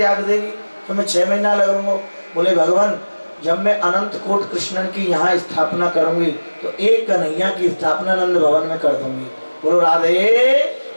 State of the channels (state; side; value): inverted; both; correlation -1.00